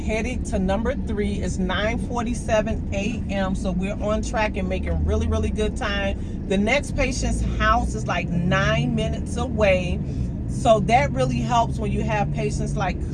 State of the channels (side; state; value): both; identical; correlation 1.00